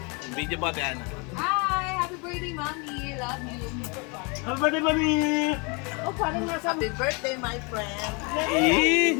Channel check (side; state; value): right; quieter; 31.4 dB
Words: Video po ate Ana. Hi! Happy birthday, Mami! Love you! Happy birthday, Mami! Oh, parang nasa... Happy birthday, my friend.